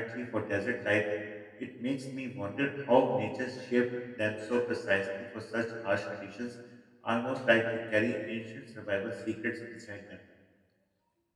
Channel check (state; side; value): identical; both; correlation 1.00